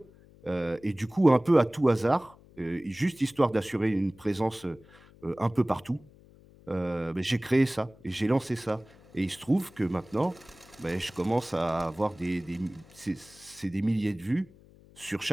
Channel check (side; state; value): left; noise; hum, 25 dB below the sound